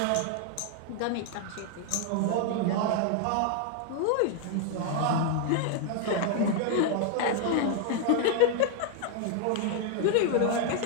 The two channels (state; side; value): different; both; correlation 0.00